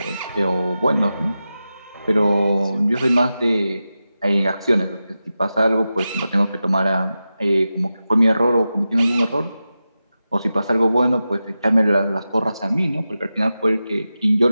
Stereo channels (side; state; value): both; inverted; correlation -0.92